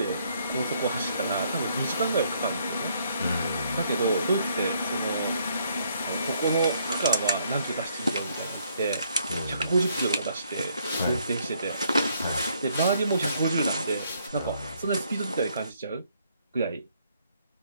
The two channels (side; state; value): both; inverted; correlation -0.70